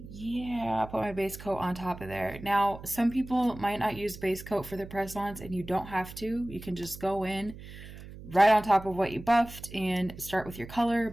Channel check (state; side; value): noise; right; hum, 14 dB below the sound